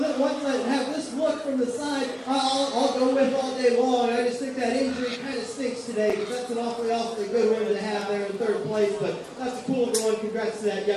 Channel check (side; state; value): both; identical; correlation 1.00